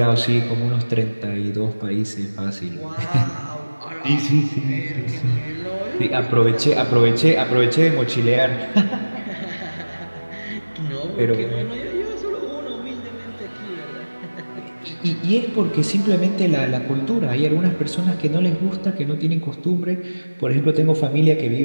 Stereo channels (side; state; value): both; inverted; correlation -1.00